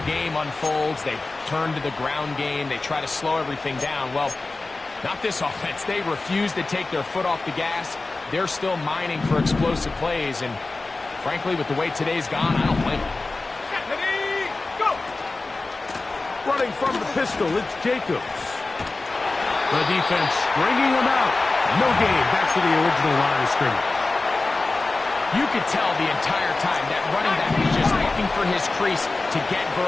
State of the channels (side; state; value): right; quieter; 3.4 dB